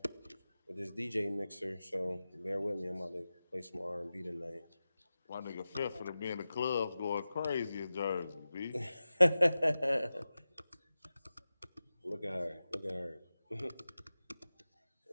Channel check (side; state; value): both; inverted; correlation -0.94